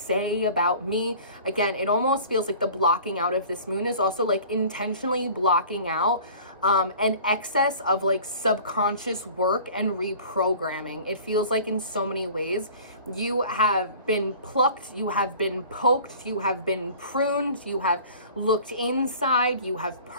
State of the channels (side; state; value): both; inverted; correlation -0.45